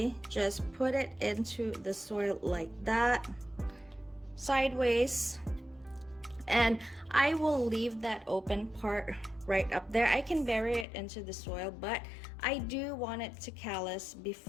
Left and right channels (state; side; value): drops out; right; at 10.9 s